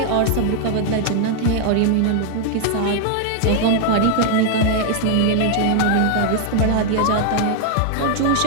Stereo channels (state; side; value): different; both; correlation 0.00